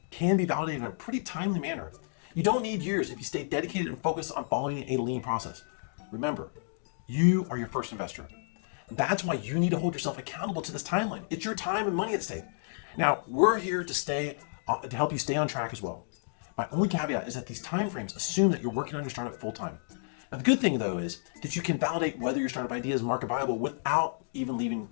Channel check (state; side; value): silent; right; digital silence